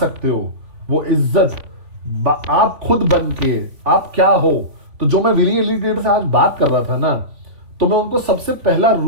हो, वो इज्जत आप खुद बन के, आप क्या हो। तो जो मैं विली लीडर से आज बात कर रहा था ना, तो मैं उनको सबसे पहला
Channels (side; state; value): left; late; 3.5 ms